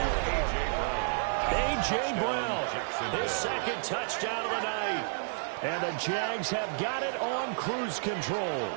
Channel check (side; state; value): left; silent; digital silence